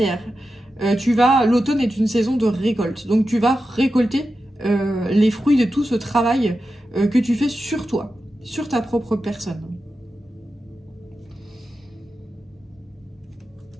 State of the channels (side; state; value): both; normal; correlation 0.91